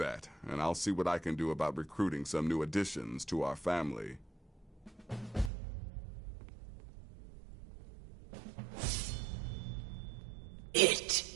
and I'll see what I can do about recruiting some new additions to our family.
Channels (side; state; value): left; drops out; at 5.5 s